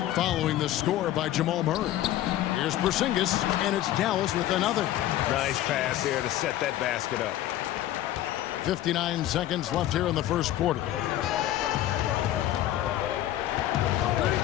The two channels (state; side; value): quieter; right; 13.4 dB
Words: following the score by Jamal Murray. Here's Porzingis, and it's Dallas with another. Nice pass there to set that basket up. 59 seconds left here in the first quarter.